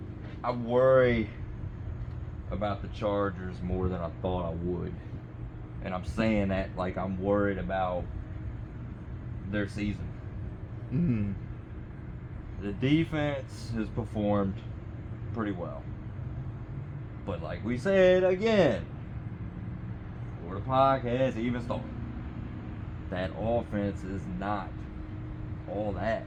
I worry about the Chargers more than I thought I would, and I'm saying that like I'm worried about their season. Mhm. The defense has performed pretty well. But like we said again, before the podcast even started, that offense is not all that.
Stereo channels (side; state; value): both; identical; correlation 1.00